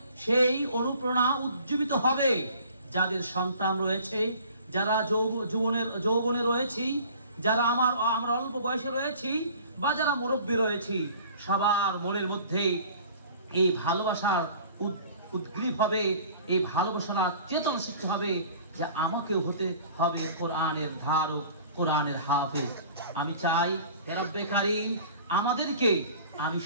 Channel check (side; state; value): both; inverted; correlation -0.48